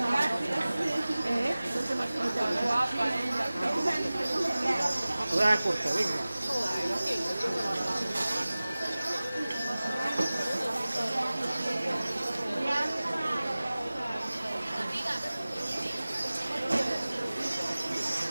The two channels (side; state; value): both; inverted; correlation -0.98